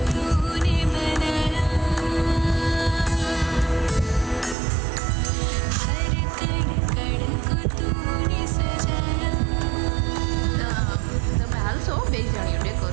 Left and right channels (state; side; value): drops out; left; at 4.5 s